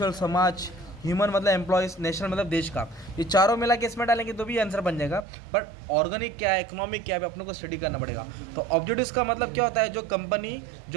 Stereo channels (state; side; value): drops out; left; at 5.2 s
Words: समाज, ह्यूमन मतलब एम्प्लॉयज़, नेशनल मतलब देश का। ये चारों मिला के इसमें डालेंगे तो भी आंसर बन जाएगा। पर ऑर्गेनिक क्या है, इकोनॉमिक क्या है, अपने को स्टडी करना पड़ेगा। तो ऑब्जेक्टिव्स का मतलब क्या होता है, जो कंपनी